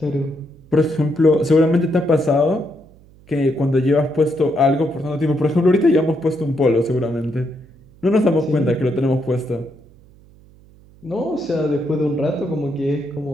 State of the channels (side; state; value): right; noise; hum, 26 dB below the sound